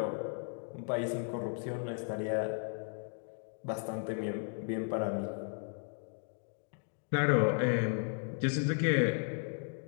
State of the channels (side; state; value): right; silent; 54 dB below the other